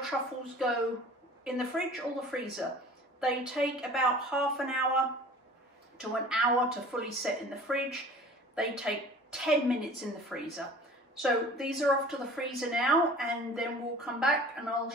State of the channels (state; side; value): normal; both; correlation 0.45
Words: go in the fridge or the freezer. They take about half an hour to an hour to fully set in the fridge. They take 10 minutes in the freezer. So these are off to the freezer now, and then we'll come back and I'll